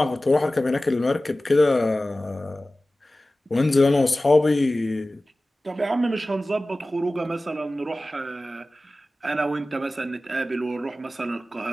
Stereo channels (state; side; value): normal; both; correlation 0.96